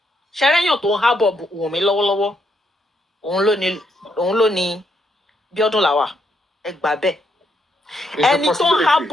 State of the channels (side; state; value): both; normal; correlation 0.76